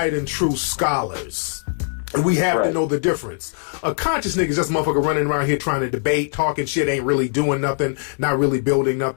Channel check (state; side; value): silent; right; digital silence